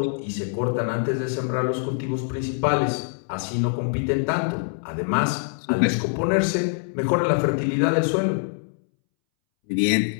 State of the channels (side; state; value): right; silent; 62 dB below the other